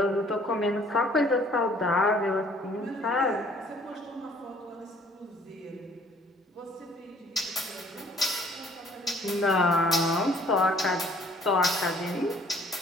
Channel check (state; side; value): normal; both; correlation 0.58